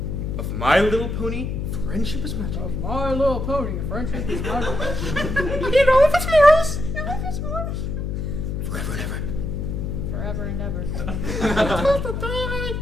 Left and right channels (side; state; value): left; noise; hum, 3 dB below the sound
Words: of My Little Pony, Friendship is Magic. of My Little Pony. Friendship is magic. You know if it's morals. Forever and ever. Forever and ever.